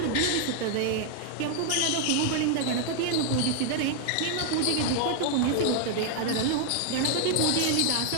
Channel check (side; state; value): both; different; correlation 0.00